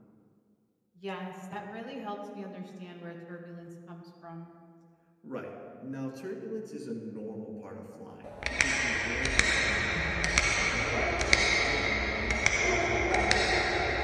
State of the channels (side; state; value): both; identical; correlation 1.00